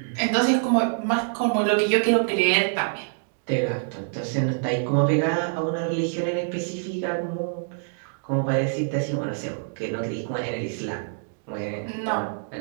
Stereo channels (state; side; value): silent; left; digital silence